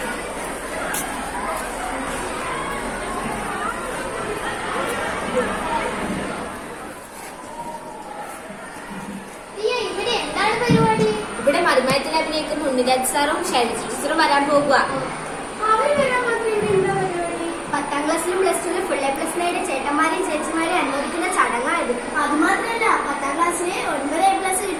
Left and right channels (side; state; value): both; identical; correlation 1.00